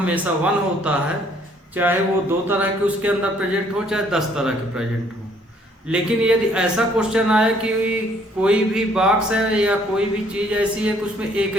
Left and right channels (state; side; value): normal; both; correlation 0.63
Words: 1 होता है, चाहे वो 2 तरह के उसके अंदर प्रेजेंट हो चाहे 10 तरह के प्रेजेंट हो। लेकिन यदि ऐसा क्वेश्चन आए कि कोई भी बॉक्स है या कोई भी चीज़ ऐसी है कि उसमें एक